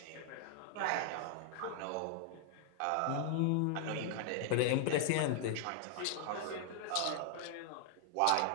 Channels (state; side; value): different; both; correlation 0.00